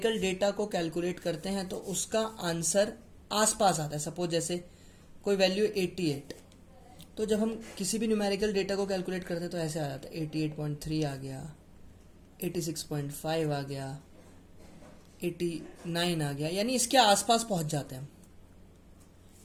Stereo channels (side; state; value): both; identical; correlation 1.00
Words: डेटा को कैलकुलेट करते हैं तो उसका आंसर आसपास आता है। सपोज जैसे कोई वैल्यू 88, तो जब हम किसी भी न्यूमेरिकल डेटा को कैलकुलेट करते हैं तो ऐसे आ जाता है 88.3 आ गया, 86.5 आ गया, 89 आ गया, यानी इसके आसपास पहुंच जाते हैं।